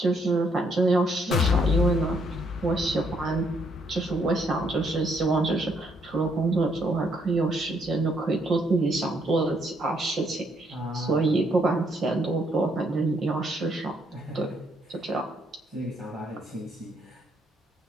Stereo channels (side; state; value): both; normal; correlation 0.71